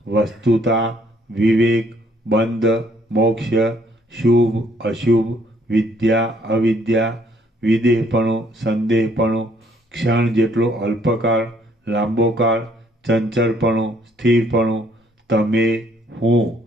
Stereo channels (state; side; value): normal; both; correlation 0.65